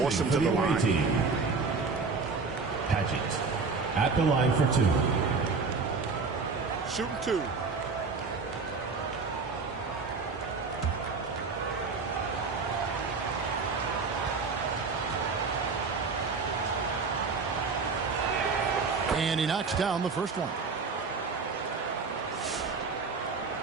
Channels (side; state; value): left; quieter; 4.6 dB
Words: him to the line. Padgett at the line for 2. Shooting 2. And he knocks down the first one.